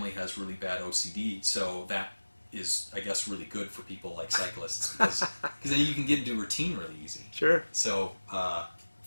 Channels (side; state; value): both; inverted; correlation -1.00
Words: has really bad OCD, so that is, I guess, really good for people like cyclists, because then you can get into routine really easy. Sure. So